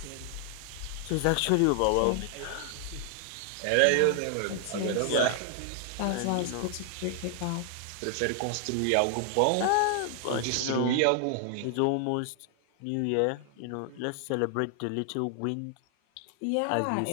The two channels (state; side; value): different; both; correlation 0.00